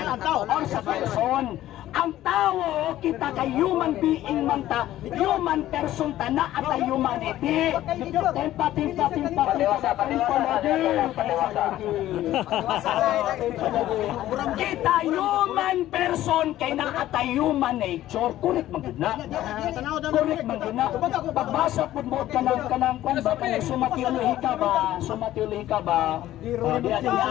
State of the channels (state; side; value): quieter; right; 13.9 dB